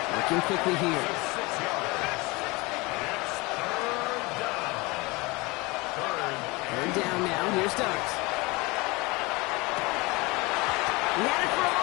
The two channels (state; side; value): quieter; right; 24.4 dB